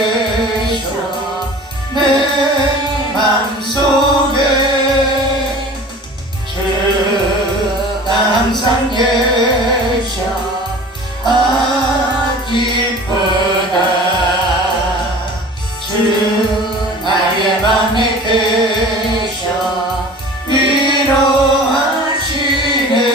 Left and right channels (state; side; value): normal; both; correlation 0.41